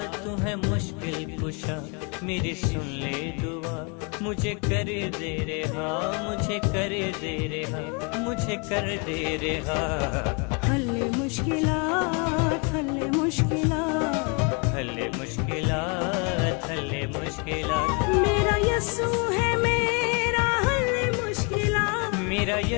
तू है मुश्किल कुशा, मेरी सुन ले दुआ मुझे कर दे रे हाँ, मुझे कर दे रे हाँ, मुझे कर दे रे हाँ। हल्ले मुश्किलात हल्ले मुश्किलात हल्ले मुश्किलात हल्ले मुश्किलात, मेरा यीशु है मेरा हल्ले मुश्किलात, मेरा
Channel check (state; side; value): quieter; right; 33.3 dB